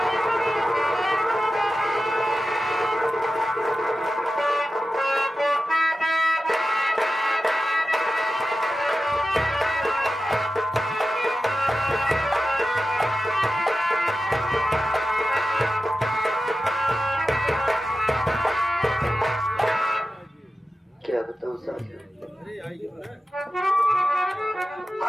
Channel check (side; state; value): both; normal; correlation 0.92